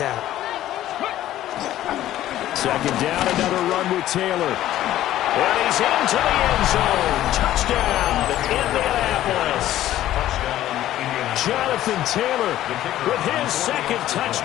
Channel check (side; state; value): right; quieter; 13.4 dB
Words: Second down, another run with Taylor. And he's into the end zone. Touchdown, Indianapolis. Jonathan Taylor with his second